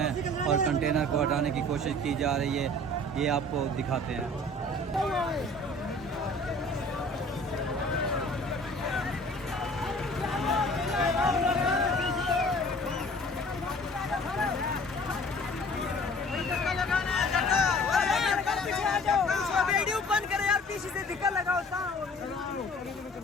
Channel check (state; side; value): normal; both; correlation 0.49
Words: और कंटेनर को हटाने की कोशिश की जा रही है। ये आपको दिखाते हैं। वीडियो बंद करे यार, पीछे से धक्का लगाओ।